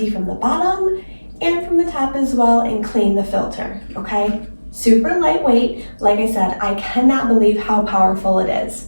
from the bottom and from the top as well and clean the filter, okay? Super lightweight. Like I said, I cannot believe how powerful it is.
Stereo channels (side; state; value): both; inverted; correlation -1.00